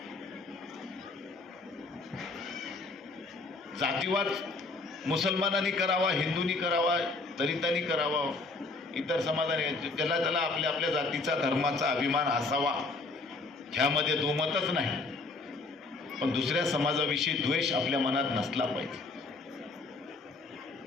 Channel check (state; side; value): quieter; right; 3.5 dB